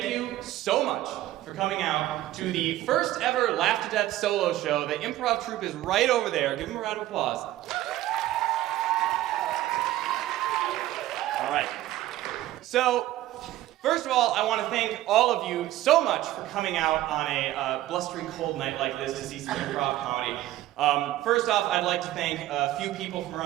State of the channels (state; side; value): quieter; left; 14.8 dB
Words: you so much for coming out to the first ever Laugh2Death solo show. The Improv Troupe is right over there. Give them a round of applause. All right. So, first of all, I want to thank all of you so much for coming out on a blustery cold night like this to see some improv comedy. First off, I'd like to thank a few people from